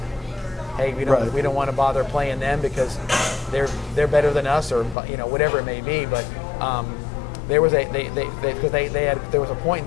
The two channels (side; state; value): right; drops out; at 5.0 s